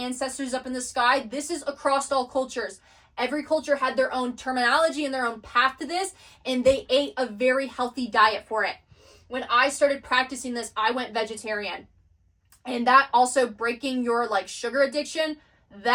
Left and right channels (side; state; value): both; identical; correlation 1.00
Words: up in the sky. This is across all cultures. Every culture had their own terminology and their own path to this, and they ate a very healthy diet for it. When I started practicing this, I went vegetarian. And that also breaking your sugar addiction,